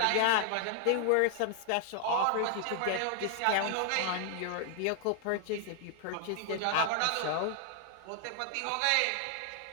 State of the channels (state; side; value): different; both; correlation 0.00